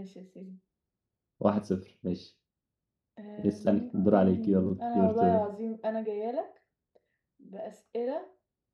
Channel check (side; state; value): both; identical; correlation 1.00